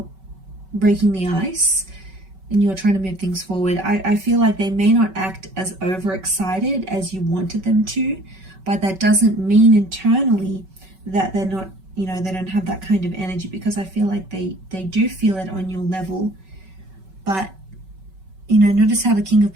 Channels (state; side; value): late; left; 5.3 ms